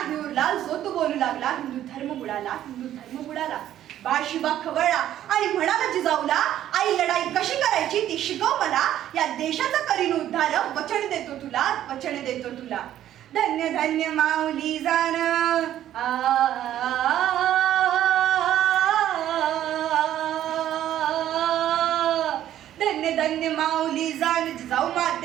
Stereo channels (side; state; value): left; quieter; 11.9 dB